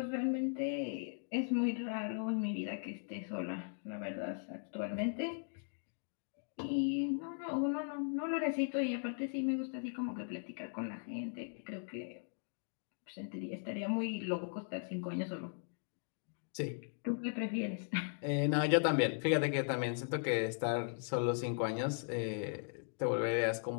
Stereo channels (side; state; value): right; silent; digital silence